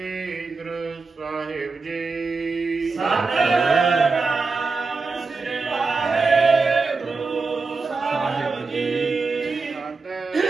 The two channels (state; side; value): quieter; left; 4.2 dB